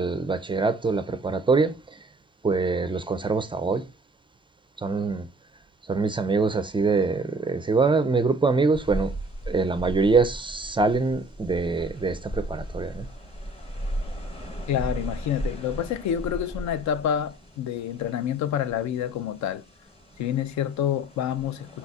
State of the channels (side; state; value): both; normal; correlation 0.52